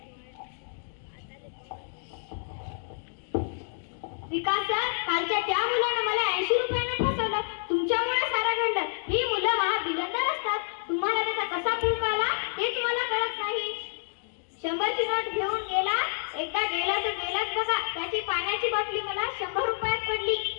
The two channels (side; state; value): right; silent; digital silence